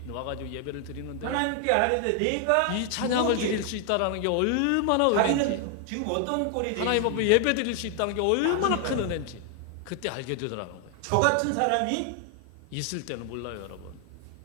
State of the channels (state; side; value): different; both; correlation 0.00